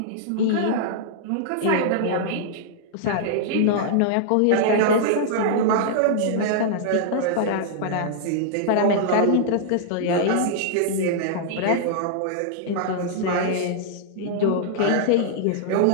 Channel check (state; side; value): different; both; correlation -0.01